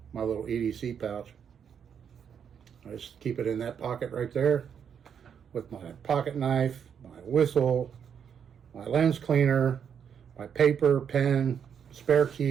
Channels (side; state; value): left; quieter; 7.7 dB